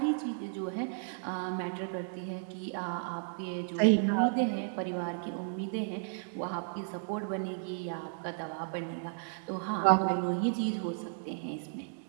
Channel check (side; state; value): left; silent; digital silence